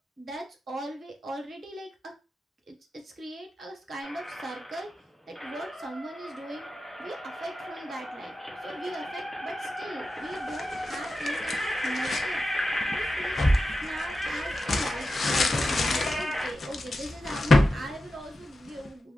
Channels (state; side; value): normal; both; correlation 0.91